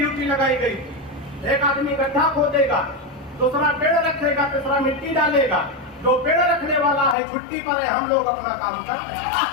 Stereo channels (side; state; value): right; drops out; at 7.2 s